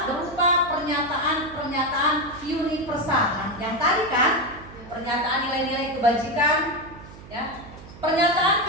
berupa pernyataan-pernyataan universal. Nah, yang tadi kan pernyataan nilai-nilai kebajikan, ya. Pernyataan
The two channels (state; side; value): noise; right; hum, 18 dB below the sound